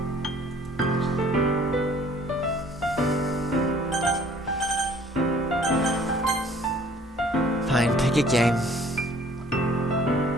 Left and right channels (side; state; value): both; normal; correlation 0.55